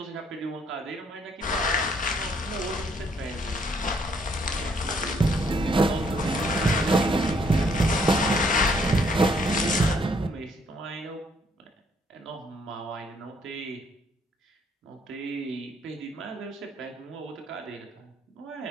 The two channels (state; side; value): normal; both; correlation 0.67